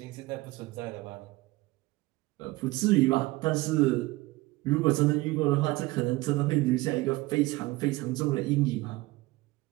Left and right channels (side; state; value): left; quieter; 20.7 dB